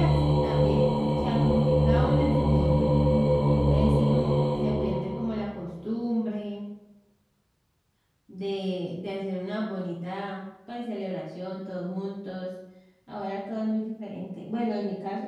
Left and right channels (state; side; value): identical; both; correlation 1.00